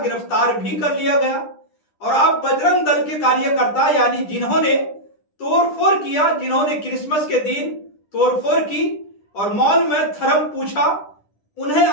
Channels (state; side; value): late; right; 10 ms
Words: भी कर लिया गया। और अब बजरंग दल के कार्यकर्ता यानी जिन्होंने तोड़फोड़ किया, जिन्होंने क्रिसमस के दिन तोड़फोड़ की और मॉल में धर्म पूछा, उन्हें